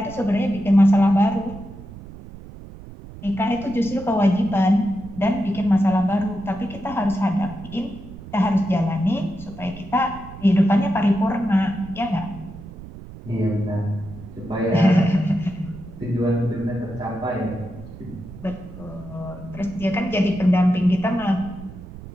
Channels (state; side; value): noise; right; rumble, 15 dB below the sound